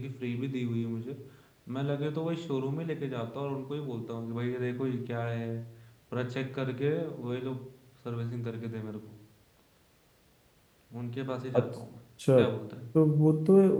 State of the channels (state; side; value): identical; both; correlation 1.00